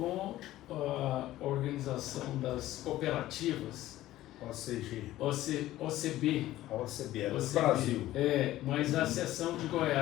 a Organização das Cooperativas, OCB. OCB, do Brasil. Mas a seção de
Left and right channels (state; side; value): quieter; right; 15.1 dB